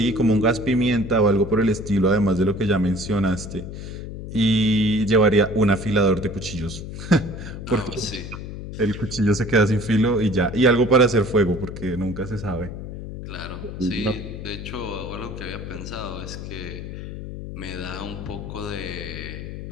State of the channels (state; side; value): noise; left; hum, 9 dB below the sound